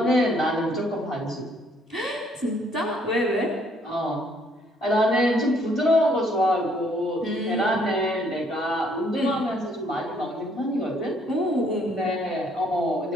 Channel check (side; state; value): both; normal; correlation 0.66